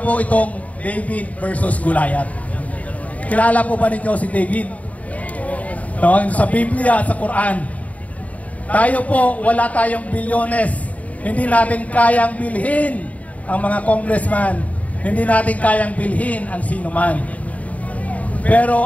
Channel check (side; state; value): right; late; 0.069 ms